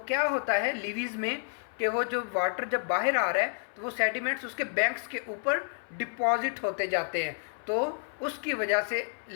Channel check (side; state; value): right; silent; 58 dB below the other